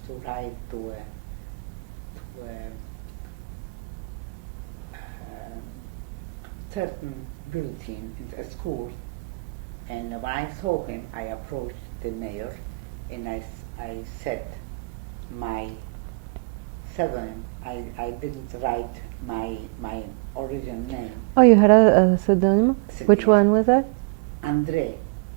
to write to a certain bulletin in a school, and when I saw him, I approached the mayor, and I said my pseudonym. I didn't write my original name. Oh, you had a pseudonym? Which Yes. one was that? Andre.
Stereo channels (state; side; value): quieter; left; 28.7 dB